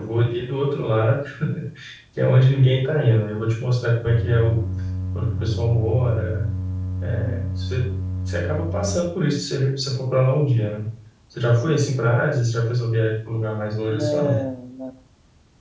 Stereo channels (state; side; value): identical; both; correlation 1.00